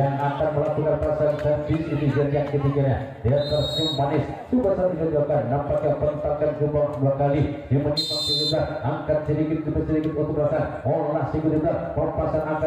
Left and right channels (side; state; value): both; identical; correlation 1.00